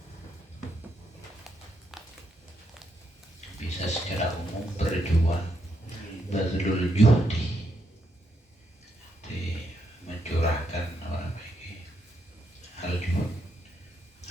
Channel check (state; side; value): normal; both; correlation 0.78